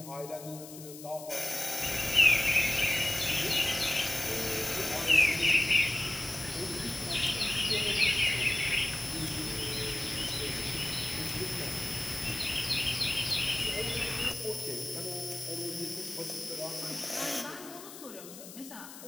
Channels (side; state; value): left; noise; hiss, 15 dB below the sound